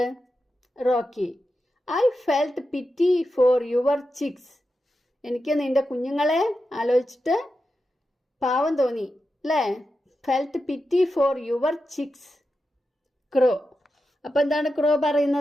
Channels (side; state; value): both; normal; correlation 0.90